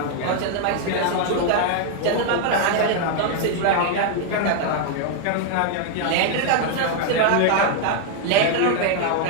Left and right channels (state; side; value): different; both; correlation 0.00